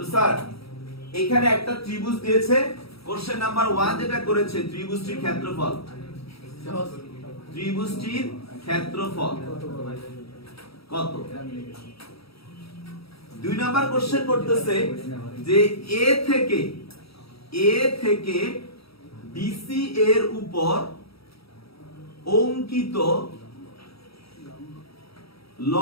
স্যার এখানে একটা ত্রিভুজ দিয়েছে, কোশ্চেন নাম্বার 1 যেটা করেছে ত্রিভুজটির ক্ষেত্রফল, সহজ। ত্রিভুজটির ক্ষেত্রফল কত। 2 নাম্বার কোশ্চেন করতেছে যে এ থেকে বিসি এর উপর অঙ্কিত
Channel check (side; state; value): right; late; 0.76 ms